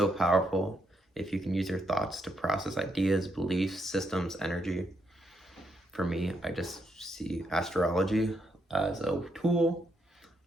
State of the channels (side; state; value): both; normal; correlation 0.78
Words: powerful if you can use your thoughts to process ideas, beliefs, systems, energy. For me, I just see astrology as a tool,